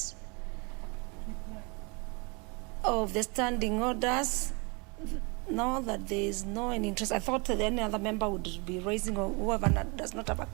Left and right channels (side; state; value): left; quieter; 30.3 dB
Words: of the standing orders. Now that there is no any interest, I thought that any other member would be raising, or whoever does not have a